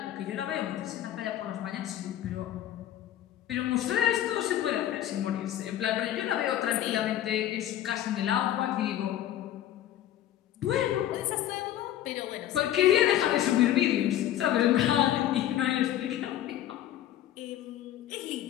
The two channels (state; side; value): quieter; right; 12.2 dB